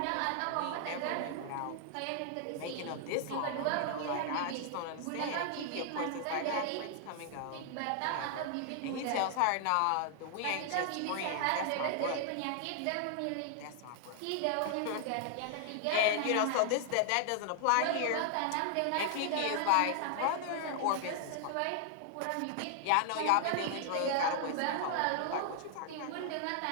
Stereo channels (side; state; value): both; different; correlation 0.00